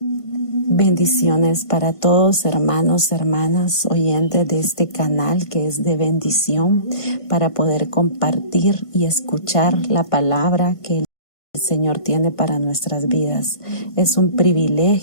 Bendiciones para todos, hermanos, hermanas, oyentes de este canal que es de bendición para poder compartir y escuchar la palabra que el Señor tiene para nuestras vidas. Es un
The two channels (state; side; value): late; right; 1.5 ms